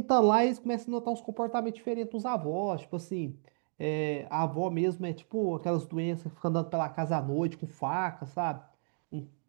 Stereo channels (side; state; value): left; silent; digital silence